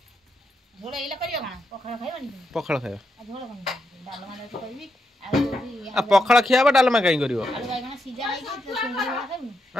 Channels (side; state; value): both; normal; correlation 0.82